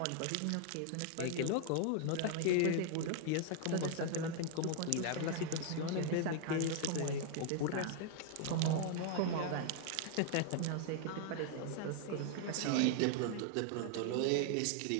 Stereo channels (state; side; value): different; both; correlation 0.00